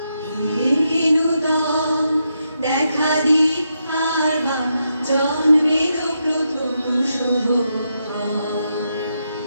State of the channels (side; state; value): both; inverted; correlation -0.83